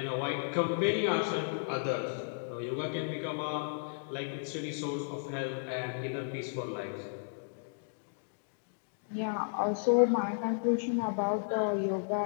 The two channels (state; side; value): silent; right; digital silence